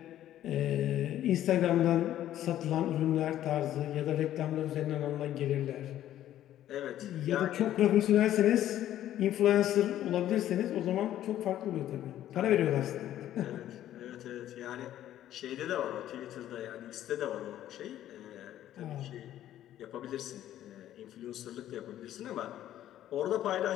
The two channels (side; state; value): right; quieter; 12.3 dB